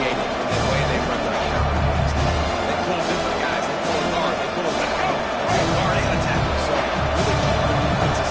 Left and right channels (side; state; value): both; identical; correlation 1.00